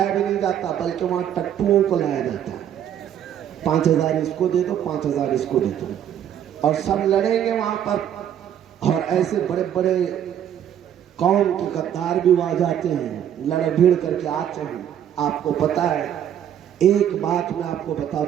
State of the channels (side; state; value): left; quieter; 9.9 dB